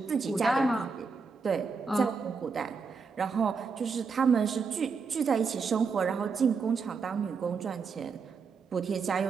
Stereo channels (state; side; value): quieter; left; 5.1 dB